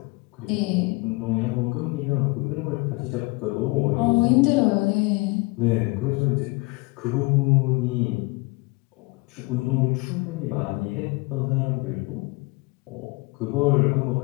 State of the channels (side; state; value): right; quieter; 25.7 dB